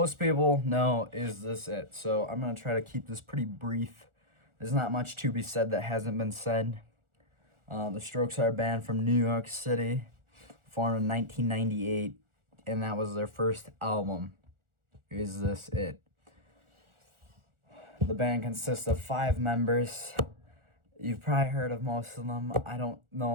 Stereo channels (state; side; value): late; left; 1.4 ms